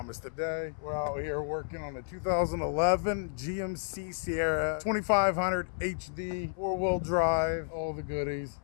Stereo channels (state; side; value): silent; right; 57 dB below the other